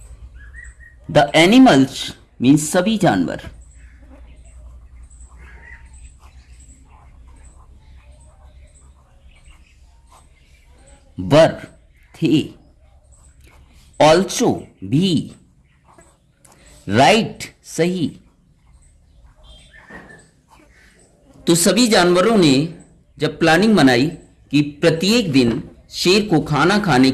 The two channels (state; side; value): identical; both; correlation 1.00